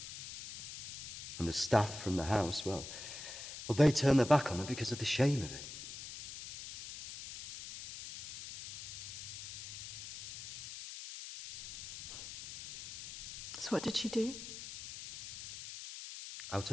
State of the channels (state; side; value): noise; left; hiss, 9 dB below the sound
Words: And the staff from the house, well, they turned their back on her because of the shame of it. So what did she do? Out